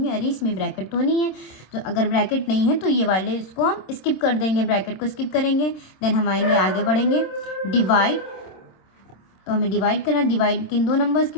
अरे इसमें ब्रैकेट तो नहीं है। तो अगर ब्रैकेट नहीं है तो ये वाले इसको हम स्किप कर देंगे, ब्रैकेट को स्किप करेंगे। देन हम आएंगे, आगे बढ़ेंगे, डिवाइड। तो हमें डिवाइड करना, डिवाइड किन दो नंबर्स के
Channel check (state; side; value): late; right; 26 ms